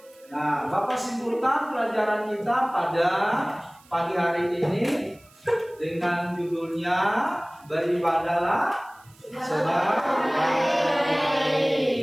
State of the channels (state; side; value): noise; right; hiss, 28 dB below the sound